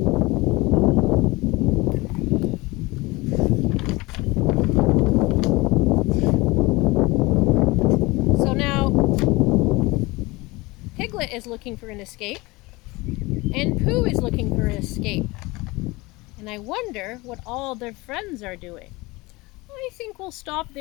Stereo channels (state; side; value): quieter; right; 22.8 dB